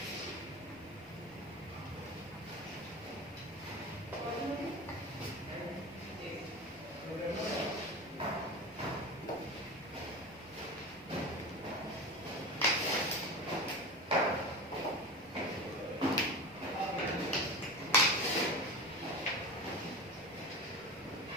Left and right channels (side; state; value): both; normal; correlation 0.29